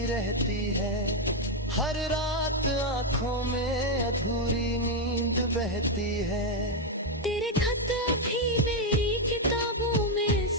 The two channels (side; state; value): both; normal; correlation 0.02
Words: रहती है, हर रात आंखों में अधूरी नींद बहती है। तेरे खत अभी मेरी किताबों में